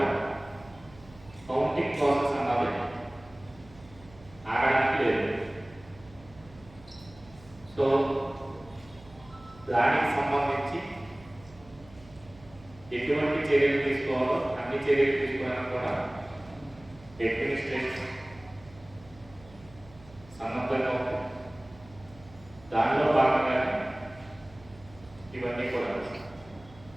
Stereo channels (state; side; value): noise; right; hum, 22 dB below the sound